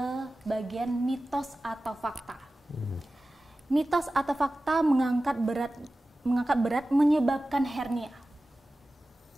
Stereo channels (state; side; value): normal; both; correlation 0.96